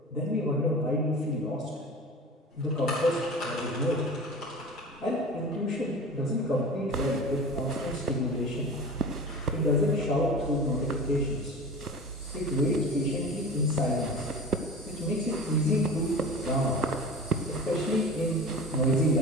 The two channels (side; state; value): both; normal; correlation 0.35